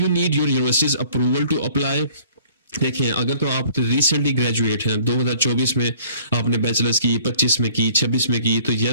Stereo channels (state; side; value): inverted; both; correlation -0.53